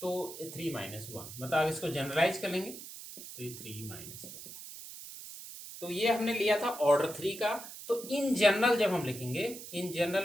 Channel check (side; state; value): right; noise; hiss, 12 dB below the sound